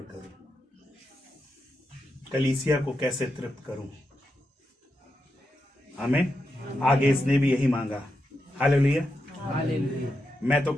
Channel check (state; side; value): normal; both; correlation 0.86